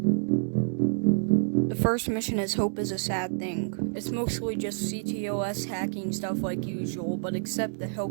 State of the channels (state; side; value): silent; left; digital silence